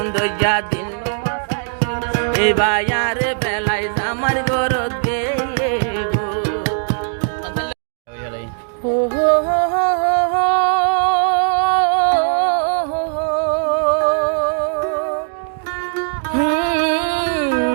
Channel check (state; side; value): silent; left; digital silence